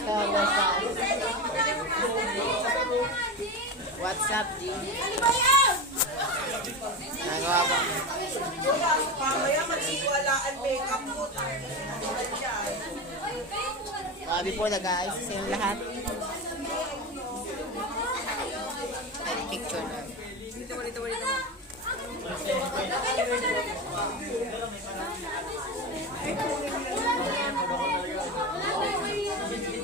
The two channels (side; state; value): both; normal; correlation 0.22